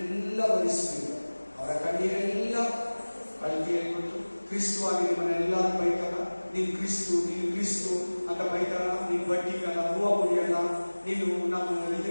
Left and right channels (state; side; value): inverted; both; correlation -1.00